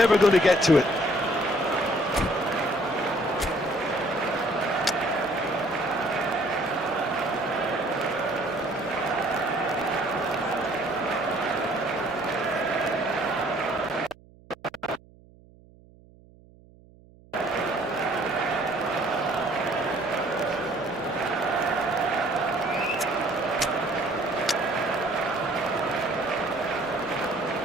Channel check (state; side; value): noise; right; hum, 25 dB below the sound